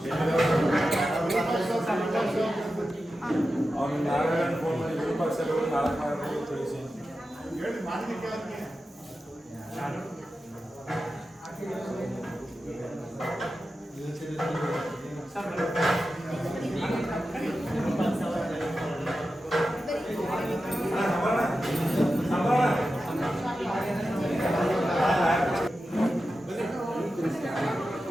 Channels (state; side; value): normal; both; correlation 0.92